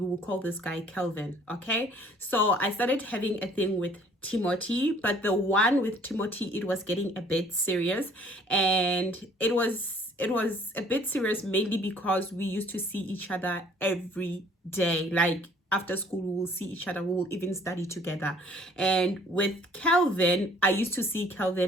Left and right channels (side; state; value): both; normal; correlation 0.57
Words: will call this guy Kelvin, okay? So I started having a thing with Timothy, but the one with Timothy, it was getting a bit serious, and it was a bit serious mainly because we used to see each other every day. Like after school, we will see each other, we will even study together. And with Kelvin, I used to see